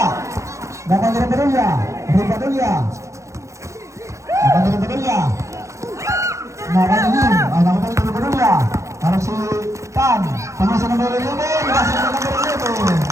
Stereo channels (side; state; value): left; late; 0.15 ms